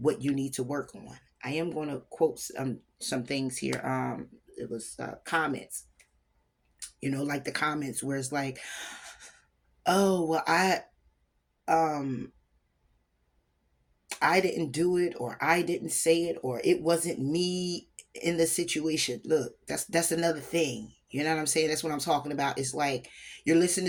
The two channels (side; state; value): both; identical; correlation 1.00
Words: you need to work on. I am going to quote some things here. It was comments, like the comments where it's like, oh, well, um, I didn't do it, or I didn't say it, or it wasn't me in the situation. Look, that's another thing. You know what I'm saying? That's what I'm talking about. It's like you're